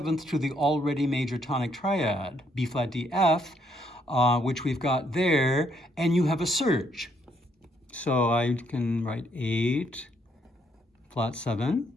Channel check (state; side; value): normal; both; correlation 0.71